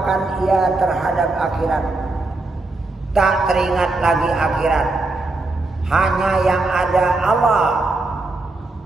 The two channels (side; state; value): left; quieter; 3.1 dB